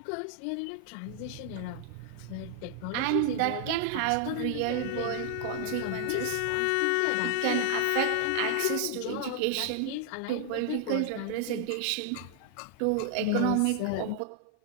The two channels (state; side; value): different; both; correlation 0.00